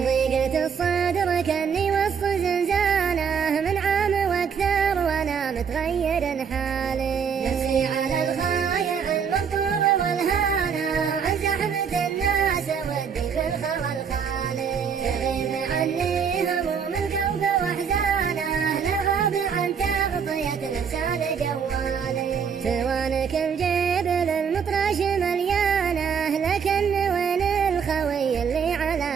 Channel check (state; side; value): quieter; left; 6.8 dB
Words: ضيقة الصدر كني وسط زنزانه، من عام واكثر وانا متغير حالي. نفسي على الخايع المنطور والهانه، وعن زحمة الناس ودي في الخوى الخالي. تغيب عني هموم القلب واحزانه، لغاب عن تغطية الانسان جوالي. سوانك الجبل المطرش مليانه، لكن وين الخوي اللي